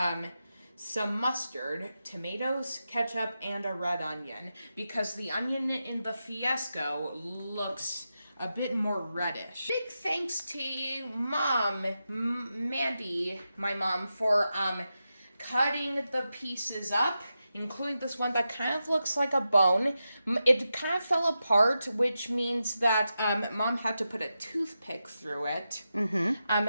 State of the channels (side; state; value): both; inverted; correlation -0.90